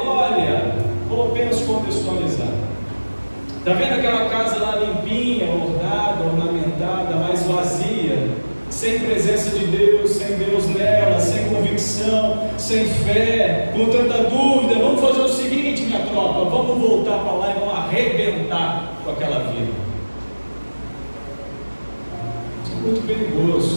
vou apenas contextualizar, está vendo aquela casa lá limpinha, ornada, ornamentada, mas vazia, sem presença de Deus, sem Deus nela, sem convicção, sem fé, com tanta dúvida? Vamos fazer o seguinte, minha tropa, vamos voltar para lá e vamos arrebentar com aquela vida. Isso é muito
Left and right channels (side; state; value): both; inverted; correlation -1.00